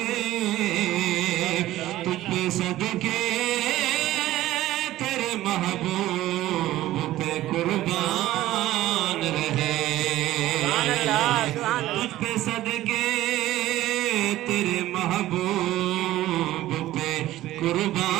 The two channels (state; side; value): quieter; left; 15.1 dB